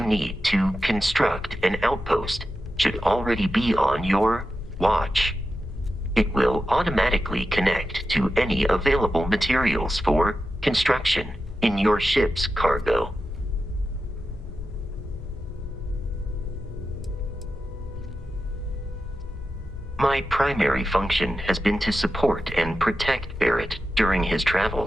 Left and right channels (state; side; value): normal; both; correlation 0.91